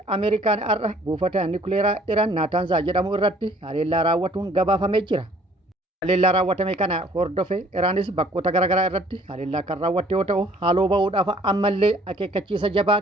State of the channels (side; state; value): both; normal; correlation 0.57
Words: Ameerikaan har'a buufata nukleeraa Iraan Naataanzaa jedhamu irratti haleellaa raawwatuun gabaafamee jira. Haleellaa raawwatame kana hordofe Iraanis bakkoota garaagaraa irratti haleellaa kan raawwatte yoo ta'u haaloo bahuudhaaf ammallee akeekkachiisa jabaa